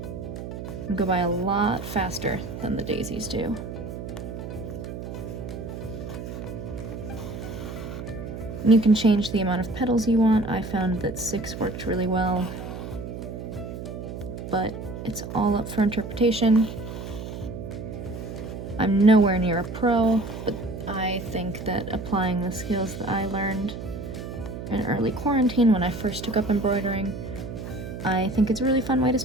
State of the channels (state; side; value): noise; right; hum, 8 dB below the sound